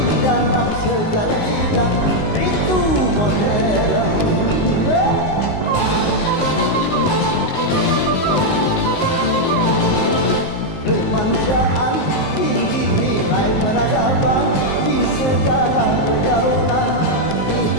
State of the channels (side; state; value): right; late; 19 ms